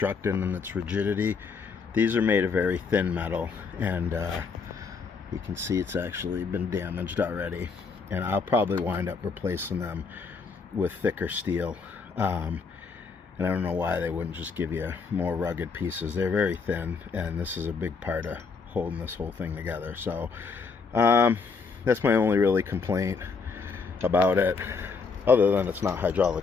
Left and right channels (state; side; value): quieter; right; 5.0 dB